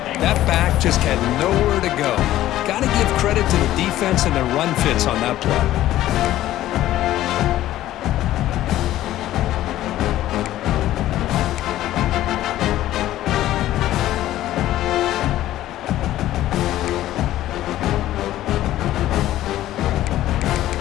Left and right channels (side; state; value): right; quieter; 14.0 dB